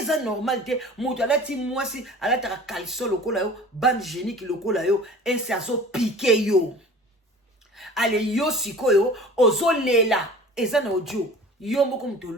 normal te mutu alati mwasi alataka caleçon lokola yo bande génique lokola yo et c'est azo piquer yo ale yo sikoyo ozo lela eza na audio yo moko mtu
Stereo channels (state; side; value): normal; both; correlation 0.42